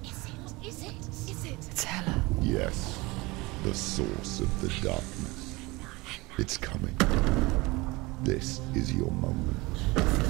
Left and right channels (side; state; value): left; quieter; 23.0 dB